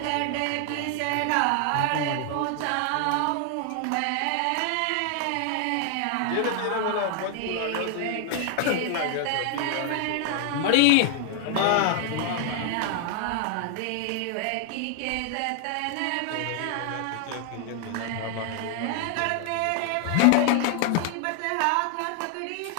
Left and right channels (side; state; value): both; different; correlation 0.00